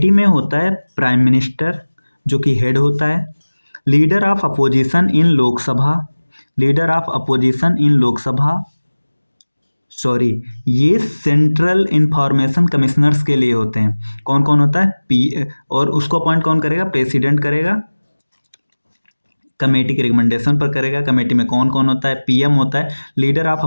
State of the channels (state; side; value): inverted; both; correlation -1.00